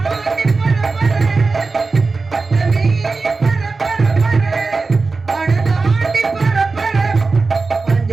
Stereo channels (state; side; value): quieter; left; 4.0 dB